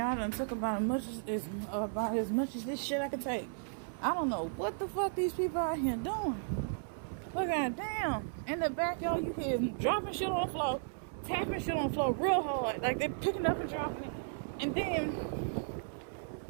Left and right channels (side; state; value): left; silent; 54 dB below the other